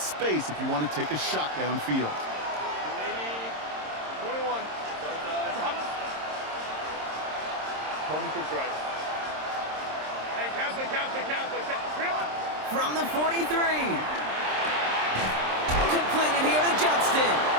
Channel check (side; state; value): left; late; 26 ms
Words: if you want to take a shot downfield. From the 43. Completed here to Johnston.